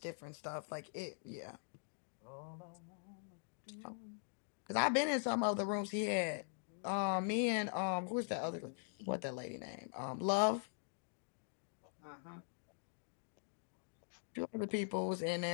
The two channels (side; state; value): right; silent; digital silence